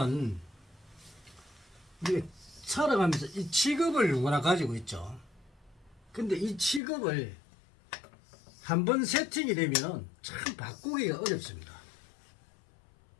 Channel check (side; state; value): right; drops out; at 6.8 s